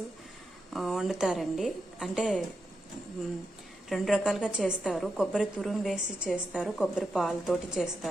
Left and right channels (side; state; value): both; normal; correlation 0.86